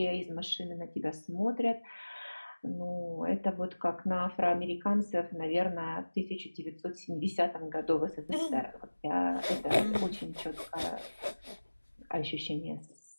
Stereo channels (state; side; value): inverted; both; correlation -1.00